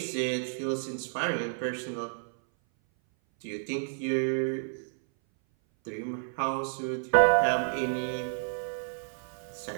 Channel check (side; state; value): left; silent; 57 dB below the other